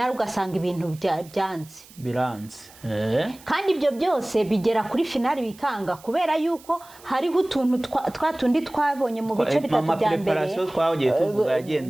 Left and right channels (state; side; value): noise; right; hiss, 23 dB below the sound